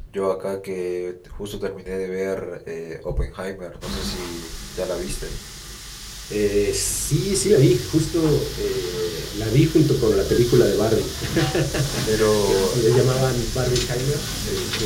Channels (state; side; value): identical; both; correlation 1.00